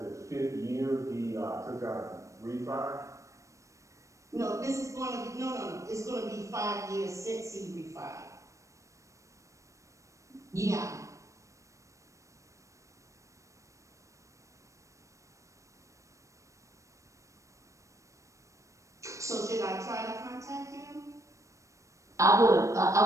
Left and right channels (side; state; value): left; late; 0.15 ms